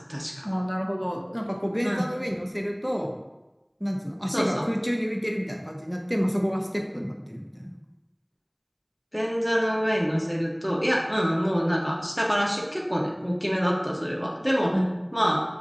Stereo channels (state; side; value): identical; both; correlation 1.00